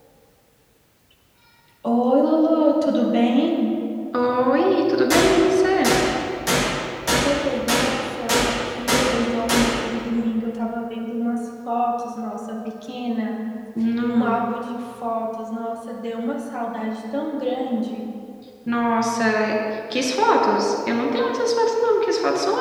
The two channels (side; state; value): both; identical; correlation 1.00